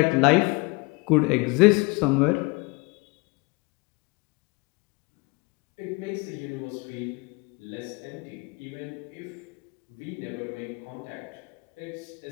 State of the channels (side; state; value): right; quieter; 27.3 dB